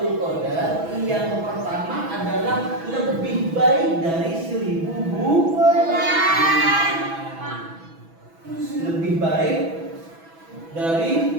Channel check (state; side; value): late; left; 6.1 ms